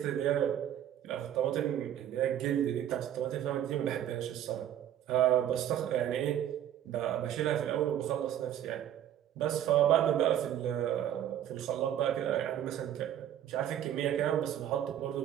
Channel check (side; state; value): left; quieter; 10.9 dB